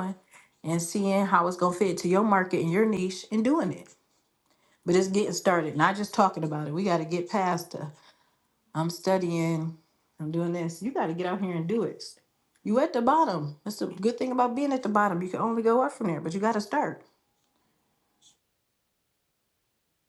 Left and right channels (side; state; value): both; identical; correlation 1.00